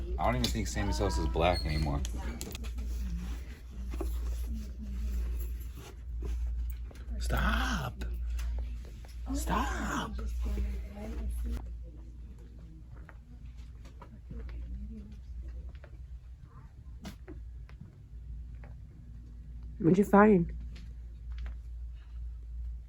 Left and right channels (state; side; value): identical; both; correlation 1.00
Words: I don't even think Sammy Sosa is black anymore. Stop! Stop! What'd you find?